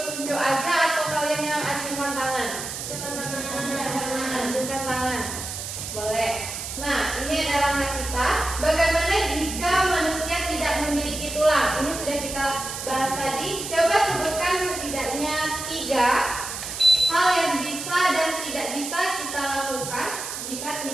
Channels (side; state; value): right; noise; hiss, 7 dB below the sound